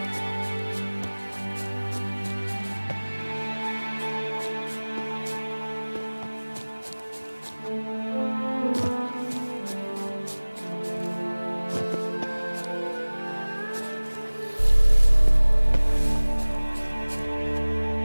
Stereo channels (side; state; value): both; inverted; correlation -1.00